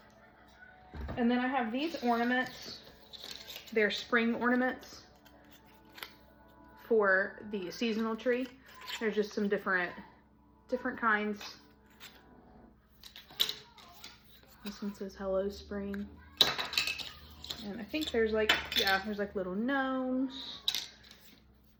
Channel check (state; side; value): identical; both; correlation 1.00